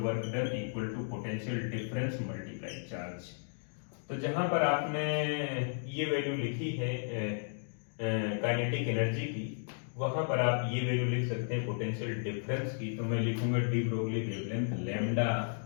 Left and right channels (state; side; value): silent; right; digital silence